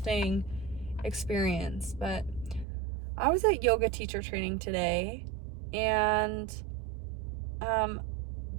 experience. But I was at yoga teacher training today, and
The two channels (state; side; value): drops out; left; at 2.7 s